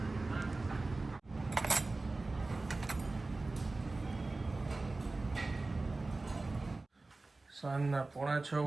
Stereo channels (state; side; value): quieter; left; 3.3 dB